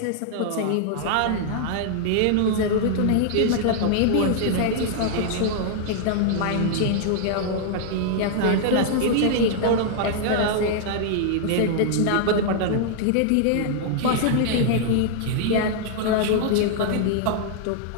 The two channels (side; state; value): both; different; correlation -0.01